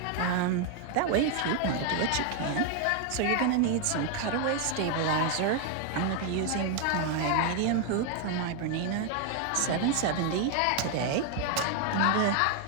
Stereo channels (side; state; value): both; different; correlation 0.01